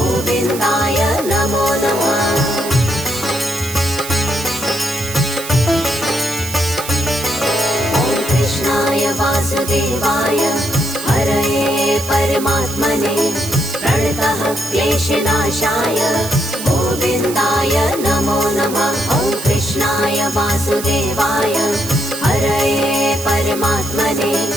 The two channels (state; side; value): noise; right; hiss, 10 dB below the sound